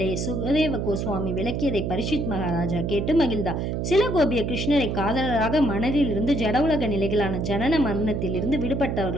சுகதேவ கோஸ்வாமி விளக்கியதை பரிஷித் மகாராஜா கேட்டு மகிழ்ந்தார். சில கோபியர் கிருஷ்ணரை காதலராக மனதில் இருந்து ஜட உலக நிலைகளான ஜனன மரணத்தில் இருந்து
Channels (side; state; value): right; noise; hum, 1 dB below the sound